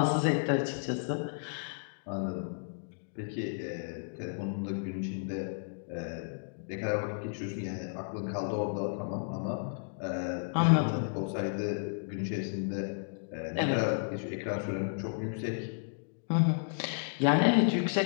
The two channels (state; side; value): silent; right; digital silence